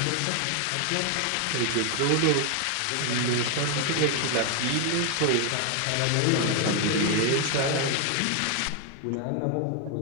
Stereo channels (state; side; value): different; both; correlation 0.01